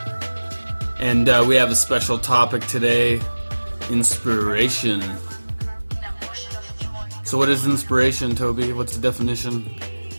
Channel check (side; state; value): both; inverted; correlation -1.00